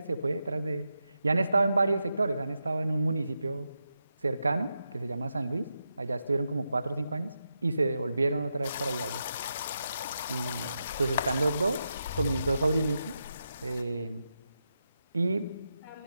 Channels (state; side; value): inverted; both; correlation -0.87